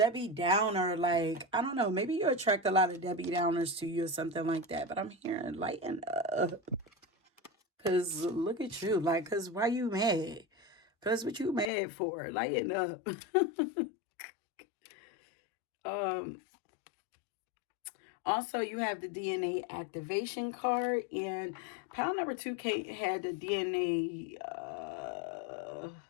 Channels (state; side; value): drops out; right; at 11.7 s